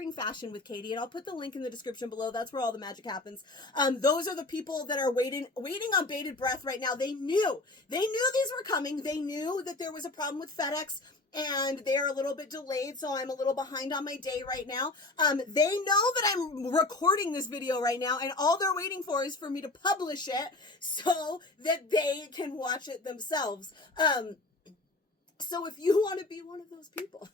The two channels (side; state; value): right; quieter; 3.0 dB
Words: Fashion with Katie, and I'll put the link in the description below. That's where all the magic happens. Those are the people that are waiting on bated breath right now. They knew these were coming. They knew that there was a problem with FedEx, and they're a little bit delayed, so I'm a little behind on my day right now. They know that I'm recording this video right now, and all they're waiting for is for me to publish it so that they can watch it themselves. So if you want to be one of those people,